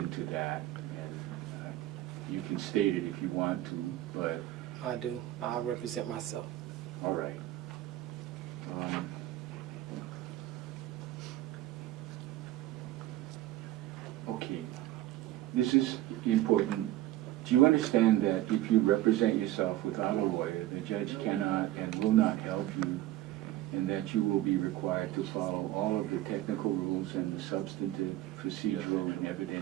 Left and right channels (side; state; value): left; quieter; 14.8 dB